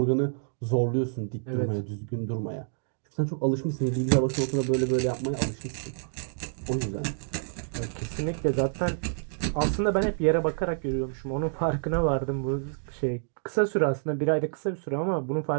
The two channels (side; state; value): left; silent; digital silence